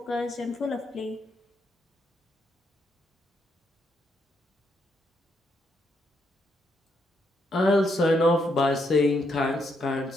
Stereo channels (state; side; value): normal; both; correlation 0.77